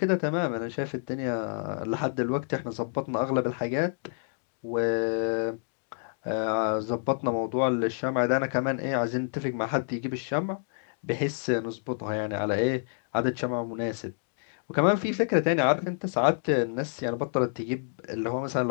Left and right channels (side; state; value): right; silent; digital silence